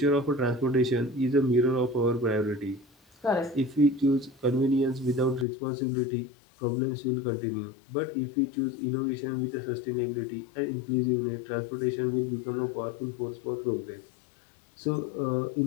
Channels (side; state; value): right; drops out; at 5.5 s